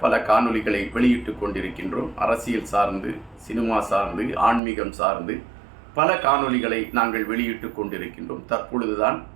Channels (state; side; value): drops out; left; at 4.6 s